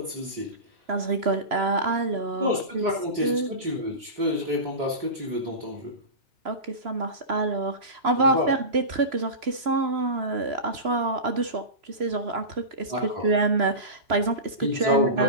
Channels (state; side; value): late; left; 3.0 ms